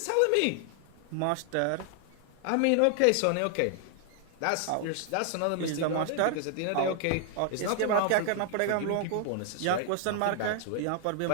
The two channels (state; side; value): different; both; correlation 0.00